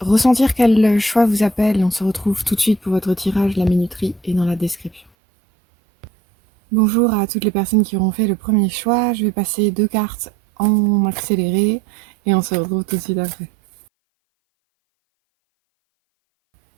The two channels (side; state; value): left; drops out; at 5.1 s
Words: quel choix vous appelle. On se retrouve tout de suite pour votre tirage. La minuterie est dans la description. Bonjour à toutes les personnes qui auront fait le premier choix. Je vais passer 2 cartes en accéléré et on se retrouve tout de suite après.